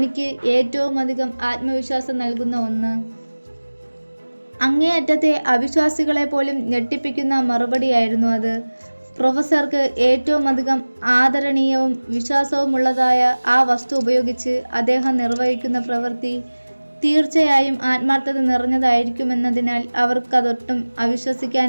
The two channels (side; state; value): both; inverted; correlation -1.00